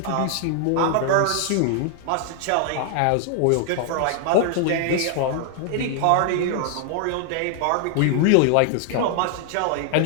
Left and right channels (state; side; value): different; both; correlation 0.00